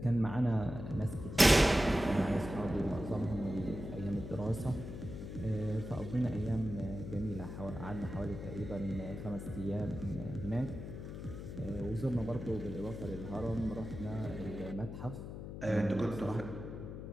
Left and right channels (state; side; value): noise; left; hum, 8 dB below the sound